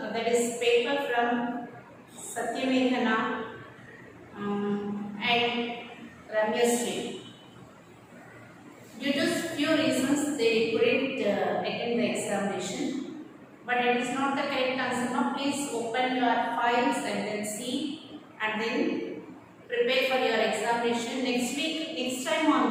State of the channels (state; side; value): identical; both; correlation 1.00